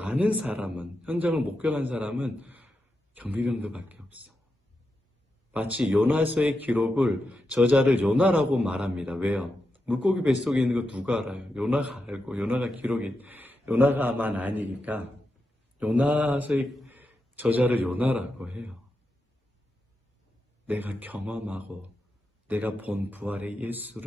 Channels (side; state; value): both; normal; correlation 0.87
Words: 사람은, 현장을 목격한 사람은 경비병들밖에 없어. 마치 요나서의 기록을 저자를 요나라고 말합니다. 왜요? 물고기 뱃속에 있는 거 누가 알아요? 요나가 알고 요나가만 아니니까 요나서의 저자를 요나라고 해요. 내가 경험하고 내가 본 부활의